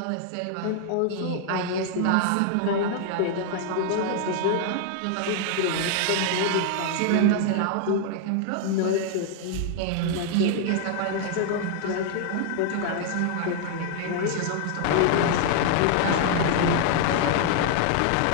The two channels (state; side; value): different; both; correlation 0.00